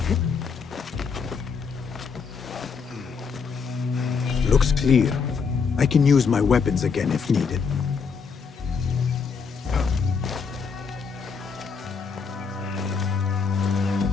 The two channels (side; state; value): right; quieter; 5.6 dB